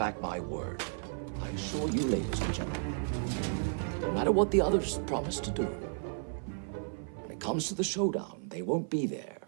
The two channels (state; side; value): silent; left; 55 dB below the other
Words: my word. I assure you, ladies and gentlemen, no matter what the others promise to do, when it comes to the showdown, they won't be there.